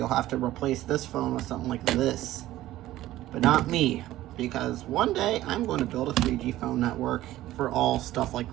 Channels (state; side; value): quieter; left; 15.1 dB